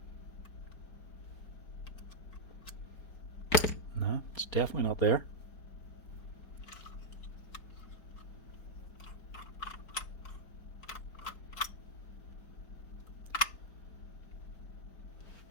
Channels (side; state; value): right; late; 4.4 ms